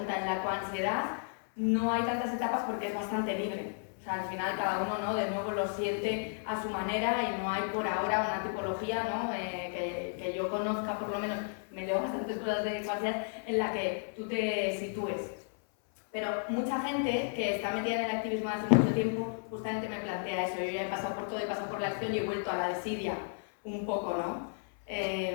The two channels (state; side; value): silent; right; 56 dB below the other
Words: En la coansiedad no hay tantas etapas porque es bastante libre. O sea, al final cada uno, ¿no?, de nuevo lo siente a su manera y no hay por ahora una tipología, ¿no?, que yo conozca, por lo menos me leo bastantes cosas de coansiedad, en la que tú te sitúes. Pero mucha gente que está metida en el activismo hace mucho tiempo justamente me plantea eso. Yo ya he pasado por todo, he pasado por la acción y he vuelto a la desidia un poco, ¿no?